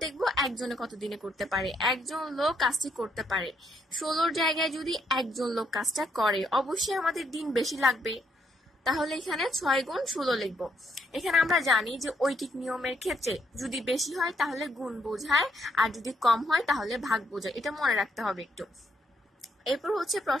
দেখবো একজনে কত দিনে করতে পারে। একজন লোক কাজটি করতে পারে, 16 জায়গায় যদি একজন লোক কাজটা করে অবশ্যই আমাদের দিন বেশি লাগবে, তাহলে এখানে 6 গুণ 16 লিখবো। এখানে আমরা জানি যে ঐকিক নিয়মের ক্ষেত্রে যদি বেশি হয় তাহলে গুণ বোঝায়, আর যদি কম হয় তাহলে ভাগ বোঝায়, এটা মনে রাখতে হবে একটু। এরপর হচ্ছে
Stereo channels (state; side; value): normal; both; correlation 0.74